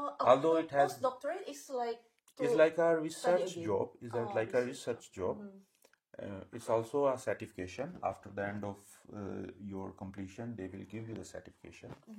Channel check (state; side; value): identical; both; correlation 1.00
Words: Although it has postdoctorate is like it's like a research again. job. It's like a research job. It's also a certification. After the end of your completion, they will give you the certification.